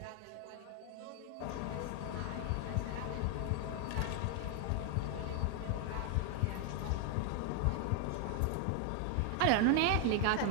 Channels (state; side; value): different; both; correlation 0.00